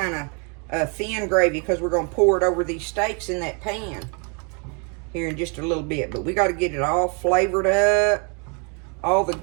of thin gravy because we're going to pour it over these steaks in that pan here in just a little bit. But we got to get it all flavored up, all the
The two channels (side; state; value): left; quieter; 35.6 dB